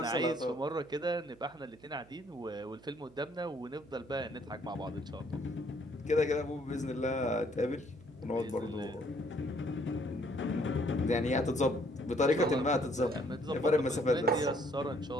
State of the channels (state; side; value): noise; right; hum, 25 dB below the sound